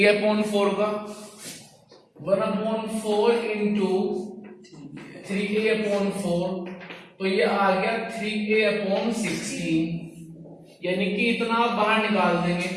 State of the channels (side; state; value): both; identical; correlation 1.00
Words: का। 1/4 इंटू 3A/4, तो ये आ गया 3A/16, यानी कि इतना आप बाहर निकाल देंगे।